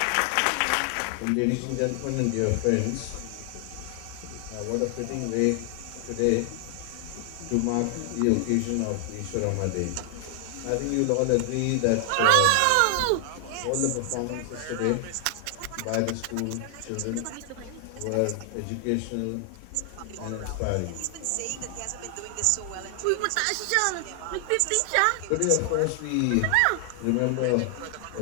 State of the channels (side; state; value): both; different; correlation 0.00